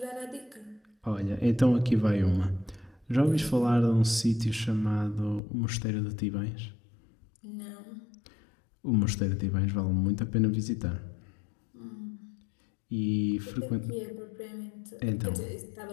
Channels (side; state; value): right; drops out; at 5.4 s